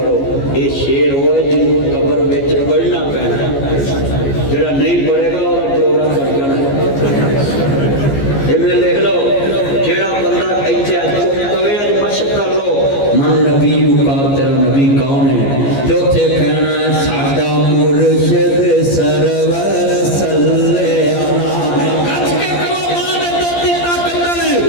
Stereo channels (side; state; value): right; late; 14 ms